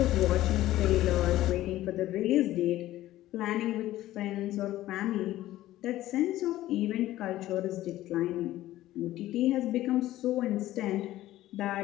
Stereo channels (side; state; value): right; quieter; 15.0 dB